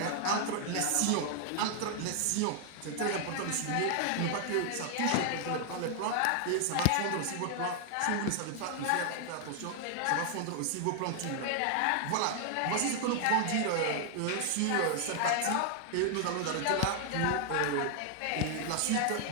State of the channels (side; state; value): both; different; correlation 0.00